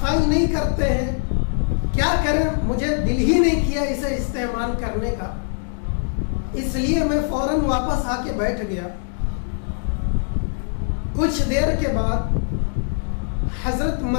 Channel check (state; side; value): silent; right; digital silence